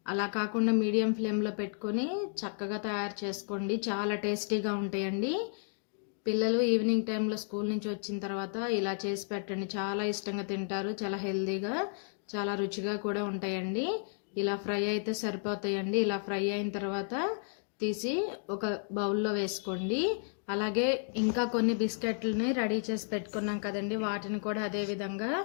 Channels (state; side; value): silent; right; 56 dB below the other